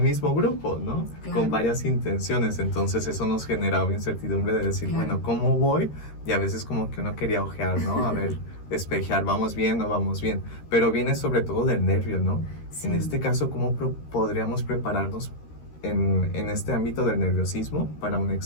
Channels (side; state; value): right; late; 13 ms